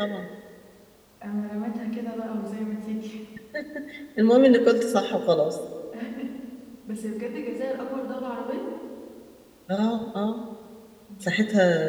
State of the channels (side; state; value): both; identical; correlation 1.00